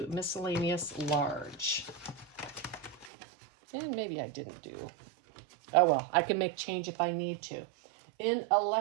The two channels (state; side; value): drops out; left; at 3.1 s